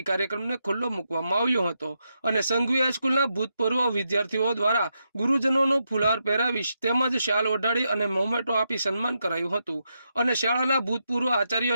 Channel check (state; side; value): inverted; both; correlation -0.84